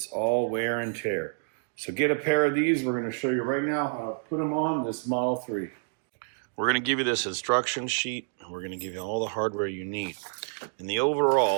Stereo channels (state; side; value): silent; left; digital silence